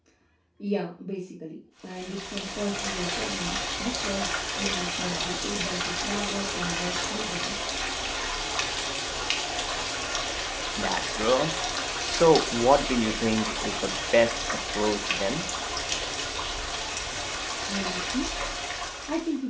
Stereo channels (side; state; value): both; identical; correlation 1.00